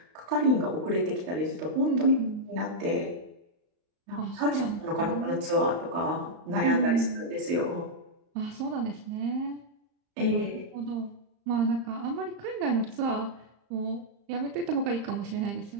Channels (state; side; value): late; left; 35 ms